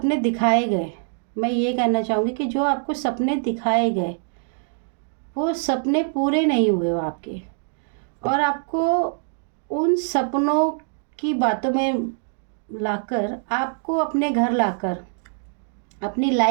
दिखाए गए, मैं ये कहना चाहूँगी कि जो आपको सपने दिखाए गए वो सपने पूरे नहीं हुए वो आपके, और आपको उन सपनों की बातों में लाकर, आपको अपने घर लाकर, अपनी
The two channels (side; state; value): left; silent; 63 dB below the other